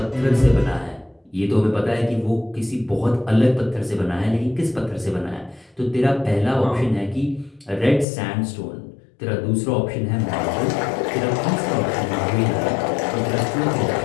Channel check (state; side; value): drops out; right; at 8.1 s